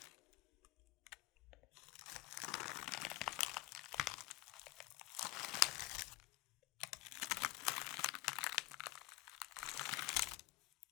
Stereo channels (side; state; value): right; quieter; 17.2 dB